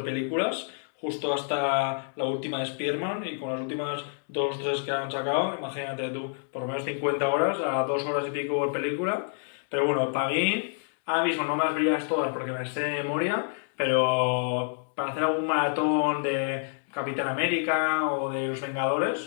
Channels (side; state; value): right; silent; digital silence